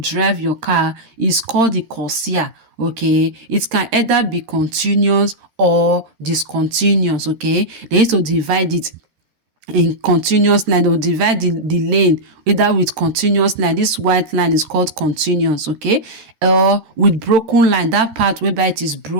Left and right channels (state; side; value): late; left; 13 ms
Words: drive your car is called the corsia, okay? It can either be continuous or discontinuous, okay? They used to divide it in continuous line. They will divide the lane either with continuous line. This white line is called continuous, okay? Or with broken line, that part whereby it is